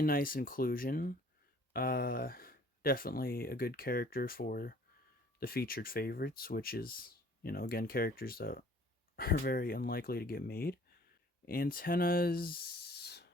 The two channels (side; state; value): both; normal; correlation 0.54